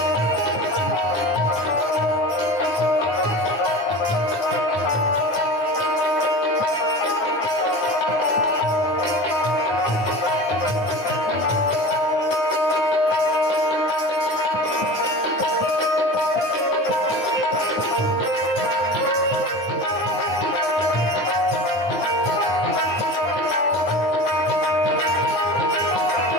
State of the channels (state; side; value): late; right; 9.8 ms